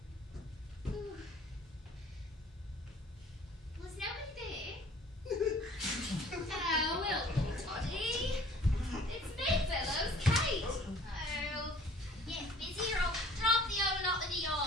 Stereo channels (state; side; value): normal; both; correlation 0.52